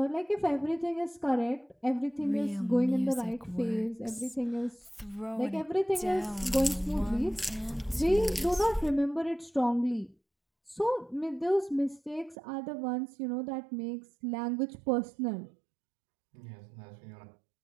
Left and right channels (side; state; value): left; drops out; at 12.4 s